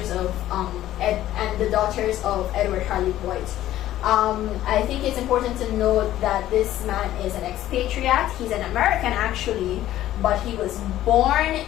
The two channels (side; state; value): right; quieter; 13.5 dB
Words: of Edward Harley Boyd. I think it's important to note that this man is an expatriate. He's an American actually, but he was born